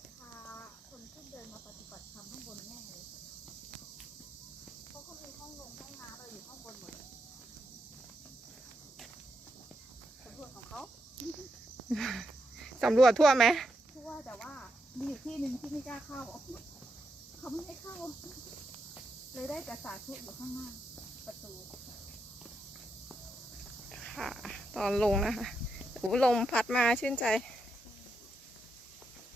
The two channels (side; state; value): both; normal; correlation 0.83